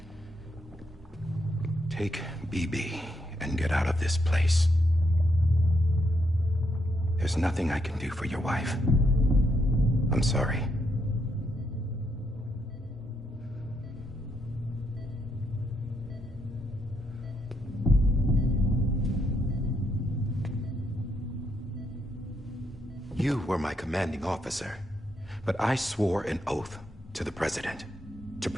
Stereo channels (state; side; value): normal; both; correlation 0.78